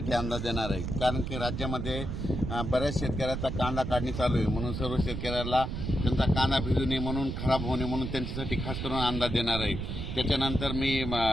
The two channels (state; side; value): noise; right; rumble, 4 dB below the sound